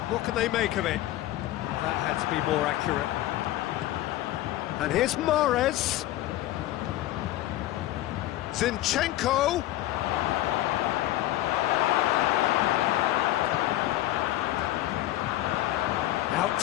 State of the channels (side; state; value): right; quieter; 15.1 dB